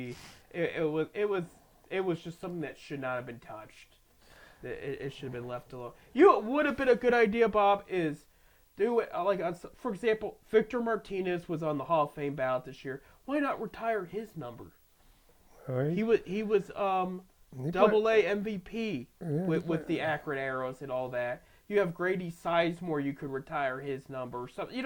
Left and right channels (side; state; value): both; identical; correlation 1.00